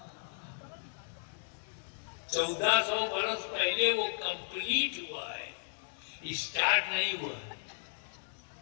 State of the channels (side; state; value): right; silent; digital silence